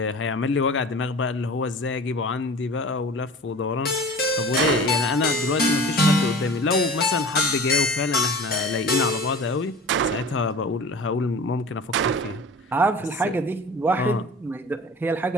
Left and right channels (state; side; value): normal; both; correlation 0.39